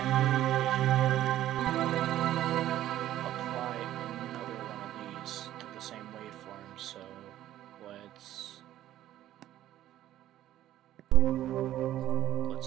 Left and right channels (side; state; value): left; quieter; 13.1 dB